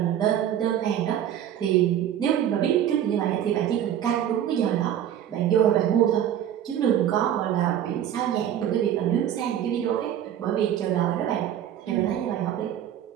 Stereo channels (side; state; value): left; quieter; 10.5 dB